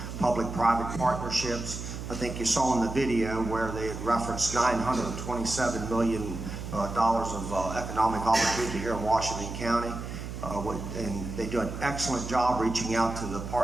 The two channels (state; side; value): noise; right; hum, 8 dB below the sound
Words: public-private partnerships. I think you saw in the video where they had referenced $927 million of economic opportunity here in Washington County. And they do an excellent job reaching out to the